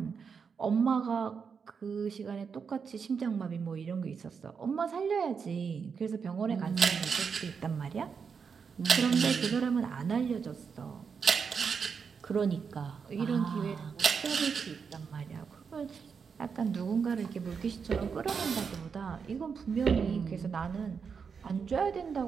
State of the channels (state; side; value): quieter; left; 6.0 dB